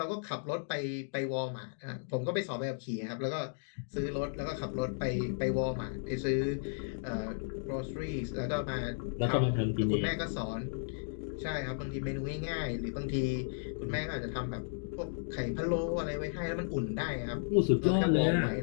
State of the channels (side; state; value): right; silent; digital silence